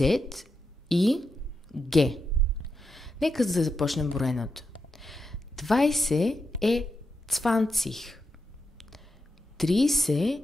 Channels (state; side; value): normal; both; correlation 0.86